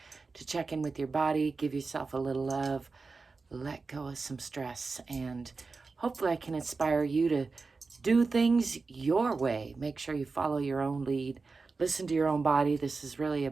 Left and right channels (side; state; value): left; quieter; 4.2 dB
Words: to check in with your body, give yourself a little love, let go of some stress, and hopefully I can inspire you to do things your way. Make sure you follow your own lead. Listen to your own body. This is really